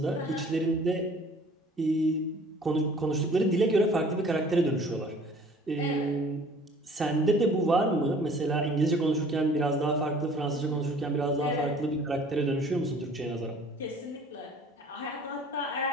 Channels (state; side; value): normal; both; correlation 0.51